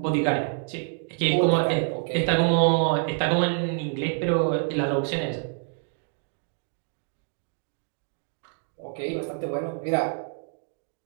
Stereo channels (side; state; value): left; silent; 56 dB below the other